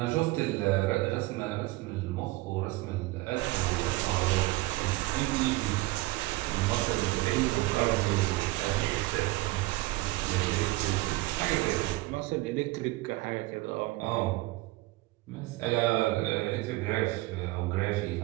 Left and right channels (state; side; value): quieter; left; 20.1 dB